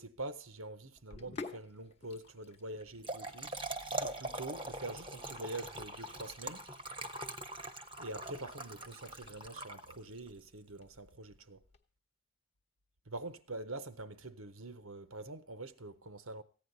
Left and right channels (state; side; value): normal; both; correlation -0.15